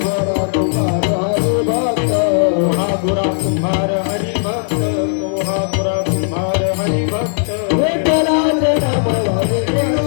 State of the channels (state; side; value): silent; right; 55 dB below the other